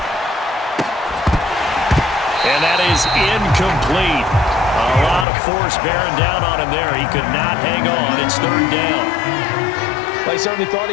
And that is incomplete. A lot of force bearing down on him there. He could not hang on. It's 3rd down. They certainly thought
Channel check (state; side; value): drops out; right; at 5.2 s